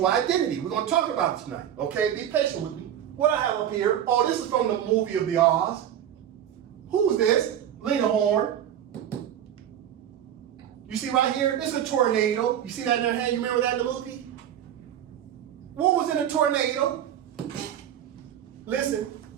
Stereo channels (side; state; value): left; quieter; 10.3 dB